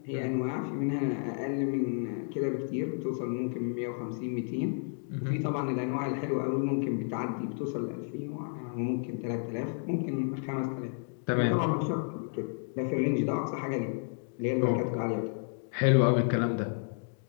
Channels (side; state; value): right; silent; 57 dB below the other